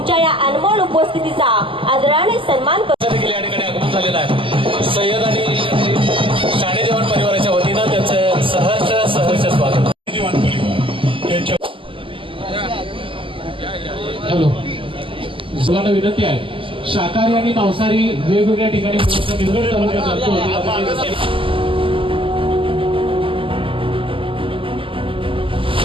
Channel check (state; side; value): late; left; 0.25 ms